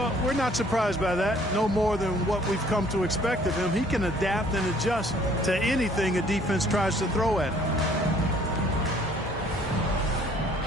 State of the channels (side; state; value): both; normal; correlation 0.58